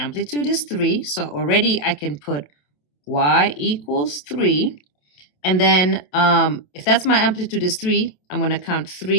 is 3. So already I can put y equals 3. And then if that's my amplitude is 3, I'm going to count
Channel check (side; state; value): right; late; 27 ms